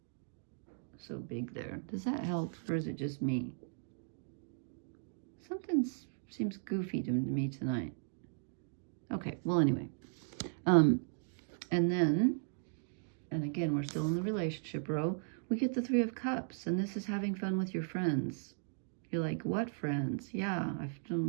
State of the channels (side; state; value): left; silent; digital silence